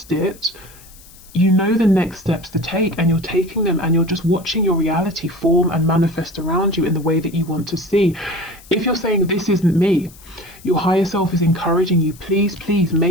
it, you know the next steps to take, and you're taking them, and you're just watching your reality form and manifest around you in the way that you want to see. If you're saying, this isn't me, your higher self is encouraging you, please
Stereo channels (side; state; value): left; noise; hiss, 23 dB below the sound